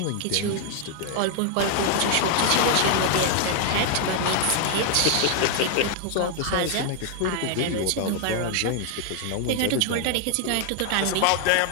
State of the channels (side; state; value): both; different; correlation 0.00